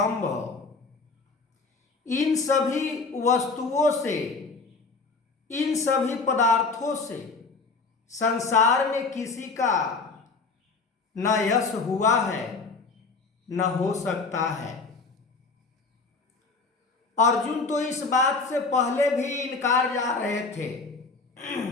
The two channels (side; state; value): right; quieter; 4.2 dB